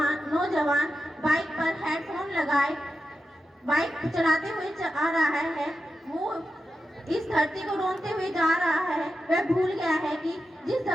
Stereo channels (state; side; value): normal; both; correlation 0.90